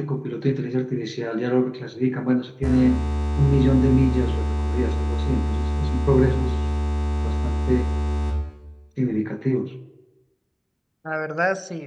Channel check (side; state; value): both; identical; correlation 1.00